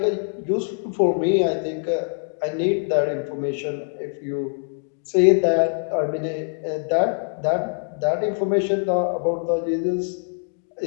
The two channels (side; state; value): right; silent; digital silence